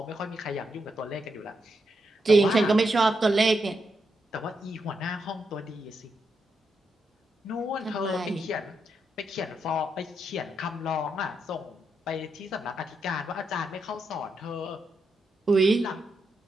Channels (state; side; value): normal; both; correlation 0.82